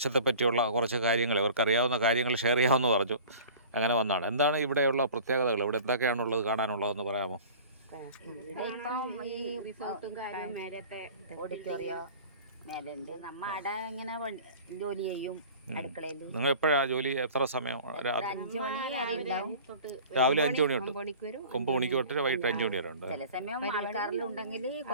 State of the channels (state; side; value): inverted; both; correlation -0.43